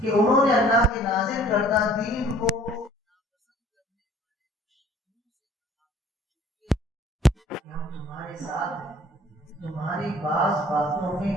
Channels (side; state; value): both; normal; correlation 0.53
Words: انہوں نے اللہ کے نازل کردہ دین کو ہم تمہارے ساتھ ہیں، تمہاری بعض باتوں میں